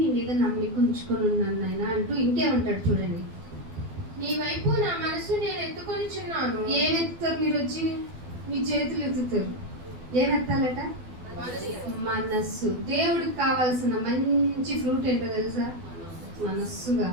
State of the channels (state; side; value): late; left; 12 ms